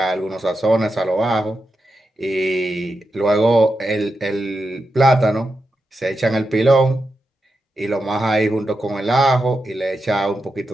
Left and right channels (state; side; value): normal; both; correlation 0.88